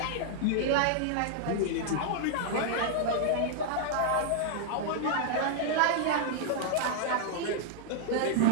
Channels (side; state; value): both; different; correlation -0.01